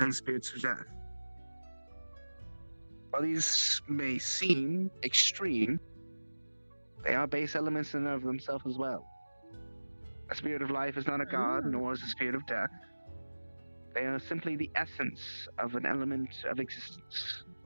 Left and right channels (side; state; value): both; inverted; correlation -1.00